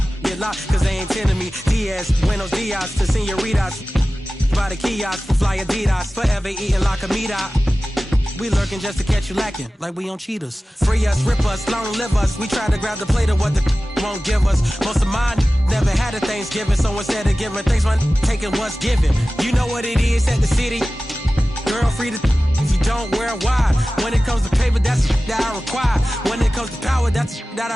get locked, cause they ain't tending me. Diaz, Buenos Dias, to senoritas, by the kiosk, for fly Adidas, forever eating la comida. We lurking just to catch you lacking, like we on cheaters. Free us, rip us, long live us. We try to grab the plate of what the won't give us. Most of mine never had a Thanksgiving, so instead of giving thanks, man, taking what's given. You know what it is at the city. Girl, free to if you don't wear wide. When it comes to paper, that's that I require. When it comes to power, that's that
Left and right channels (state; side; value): normal; both; correlation 0.96